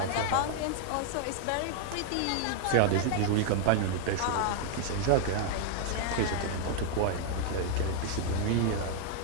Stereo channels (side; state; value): both; different; correlation 0.00